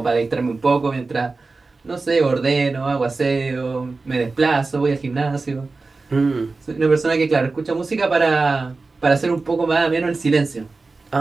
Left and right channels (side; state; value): left; quieter; 3.8 dB